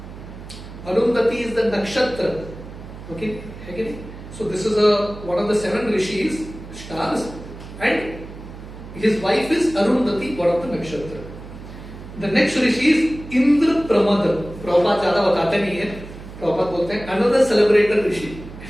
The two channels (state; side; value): noise; right; hum, 14 dB below the sound